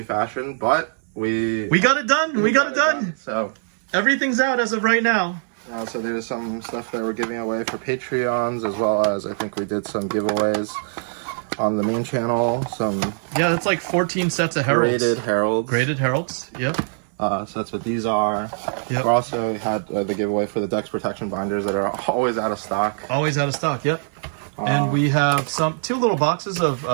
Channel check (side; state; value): left; silent; digital silence